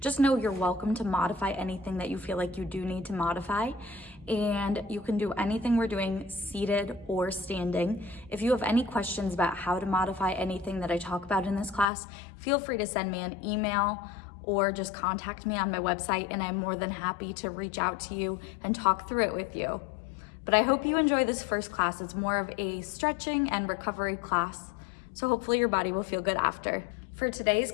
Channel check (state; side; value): drops out; right; at 11.9 s